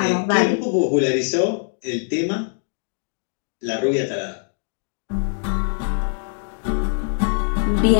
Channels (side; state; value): right; silent; 63 dB below the other